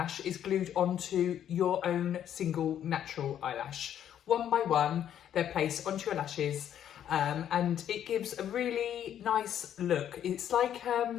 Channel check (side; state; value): right; quieter; 10.2 dB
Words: is glued onto your own single natural eyelash. One by one, they're placed onto your lashes, and it gives a really nice look. It's like